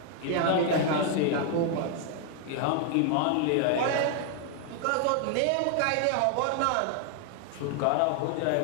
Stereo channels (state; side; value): different; both; correlation 0.00